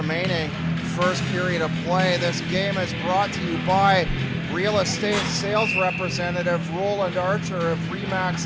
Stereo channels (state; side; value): identical; both; correlation 1.00